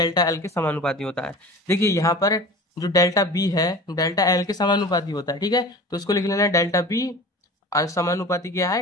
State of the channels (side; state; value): both; normal; correlation 0.38